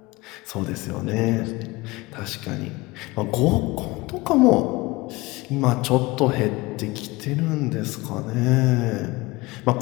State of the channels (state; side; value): quieter; right; 22.2 dB